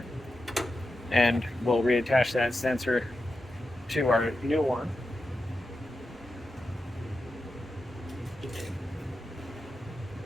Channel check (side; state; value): both; normal; correlation 0.90